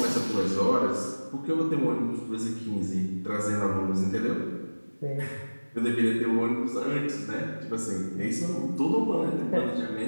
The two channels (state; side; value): inverted; both; correlation -1.00